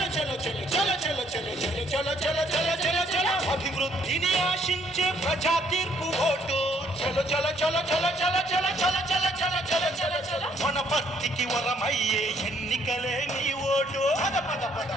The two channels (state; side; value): normal; both; correlation 0.66